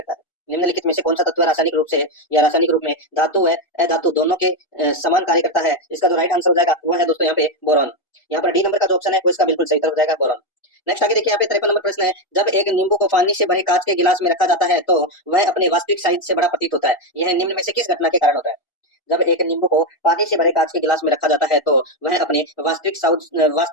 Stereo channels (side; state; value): right; late; 1.4 ms